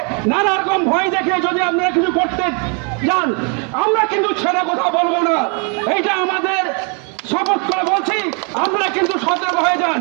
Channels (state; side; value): quieter; left; 36.7 dB